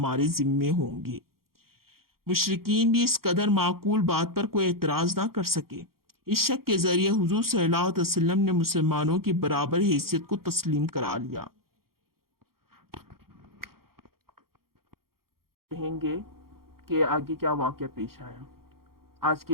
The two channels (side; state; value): left; late; 0.93 ms